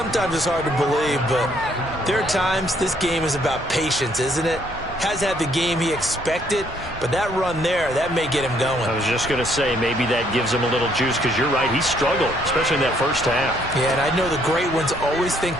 it's hard to believe, but there are times this game is about patience, isn't it? Has had the game he expected, but that run there, that may get him going. I was just going to say, maybe that gives him a little juice, because you're right, he struggled, especially in that first half. Yeah, and I know the great ones always think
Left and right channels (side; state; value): both; normal; correlation 0.67